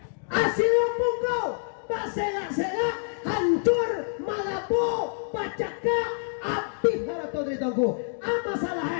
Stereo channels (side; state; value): right; silent; digital silence